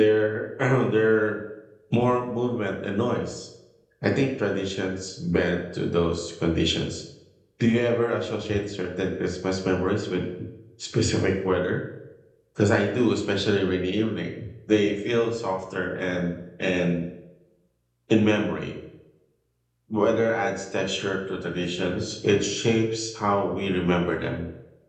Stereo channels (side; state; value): both; identical; correlation 1.00